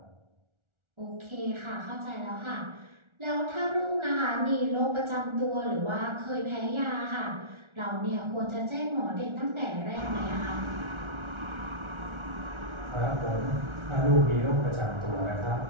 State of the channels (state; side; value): late; left; 1.4 ms